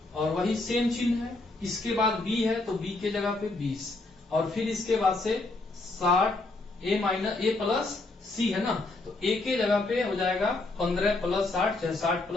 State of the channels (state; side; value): quieter; right; 3.1 dB